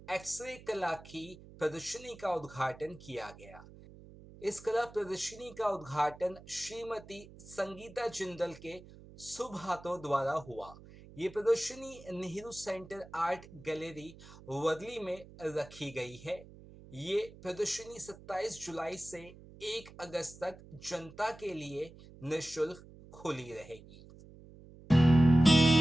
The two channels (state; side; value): noise; right; hum, 19 dB below the sound